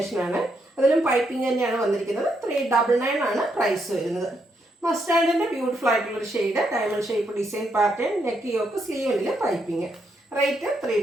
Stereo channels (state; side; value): normal; both; correlation 0.78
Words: അതിലും പൈപ്പിംഗ് തന്നെയാണ് വന്നിരിക്കുന്നത്. 399 ആണ് പ്രൈസ് വരുന്നത്. മസ്റ്റാർഡിൻ്റെ ബ്യൂട്ടിഫുൾ ആയിട്ടുള്ളൊരു shade, diamond shape design pattern, neck yoke സ്ലീവിൽ പൈപ്പിംഗ്, റേറ്റ്